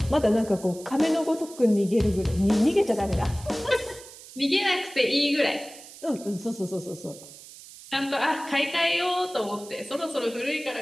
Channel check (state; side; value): noise; right; hiss, 18 dB below the sound